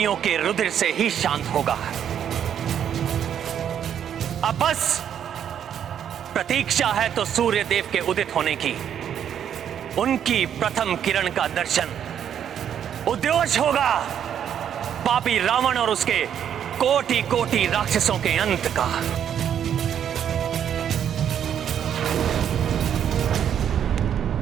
के रुधिर से ही शांत होगा। अब बस प्रतीक्षा है तो सूर्य देव के उदित होने की। उनकी प्रथम किरण का दर्शन उद्योष होगा पापी रावण और उसके कोटि कोटि राक्षसों के अंत का।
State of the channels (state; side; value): quieter; left; 9.1 dB